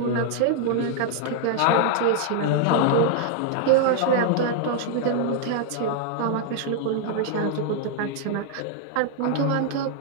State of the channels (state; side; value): different; both; correlation -0.01